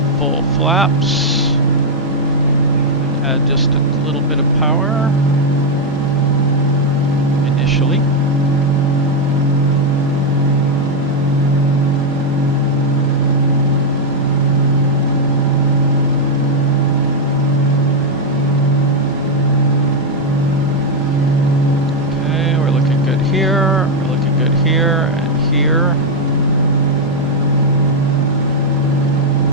full flaps. Add just a little bit of power initially. Okay, we're looking good here. We're looking good here and here.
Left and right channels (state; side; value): normal; both; correlation 0.00